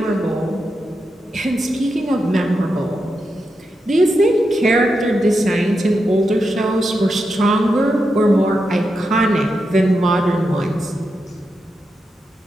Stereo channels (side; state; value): both; normal; correlation 0.87